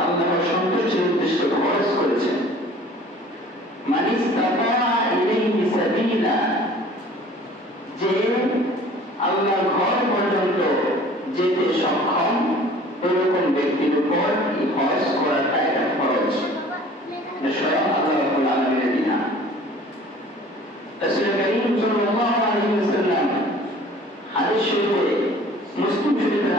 আল্লাহর সন্তুষ্টির উদ্দেশ্যে খরচ করেছেন। মান ইসতাতা ইলাইহি সাবিলা, যে আল্লাহর ঘর পর্যন্ত যেতে সক্ষম এরকম ব্যক্তির উপর এই হজ করাটা একটা ফরজ, স্বয়ং আল্লাহ রাব্বুল আলামিনের বিধান। রাসূল কারীম সাল্লাল্লাহু আলাইহি ওয়াসাল্লাম হাদিস শরীফে, মুসলিম শরীফের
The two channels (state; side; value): normal; both; correlation 0.48